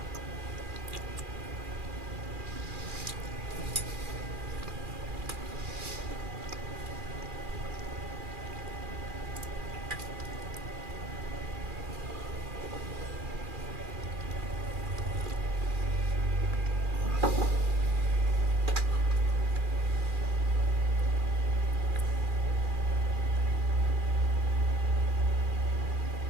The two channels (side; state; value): left; late; 2.4 ms